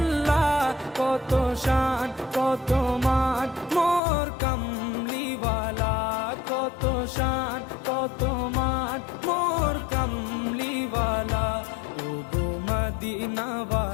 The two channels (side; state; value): right; drops out; at 4.0 s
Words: কত শান কত মান মোর কামলিওয়ালা, কত শান কত মান মোর কামলিওয়ালা। ও গো